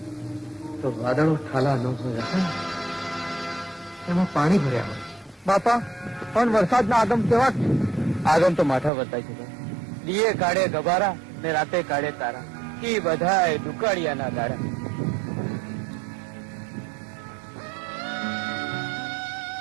તો વાદળો ઠાલા ન હોય રતન. એમાં પાણી ભર્યા હોય. બાપા, પણ વરસાદના આગમ કેવા છે? આગમ તો માથા વર્તાય છે. દીએ કાઢે ગબારા ને રાતે કાઢે તારા, એ બધાય દુકાળિયાના દાડા.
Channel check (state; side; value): drops out; left; at 8.9 s